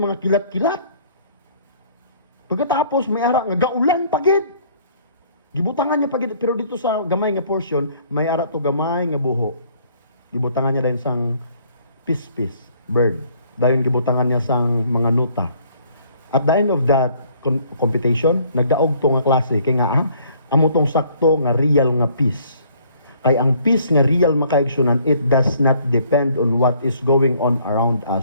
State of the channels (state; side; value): inverted; both; correlation -0.60